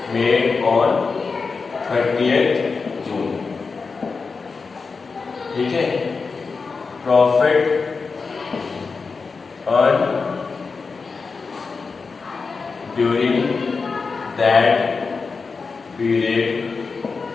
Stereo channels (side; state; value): right; quieter; 4.7 dB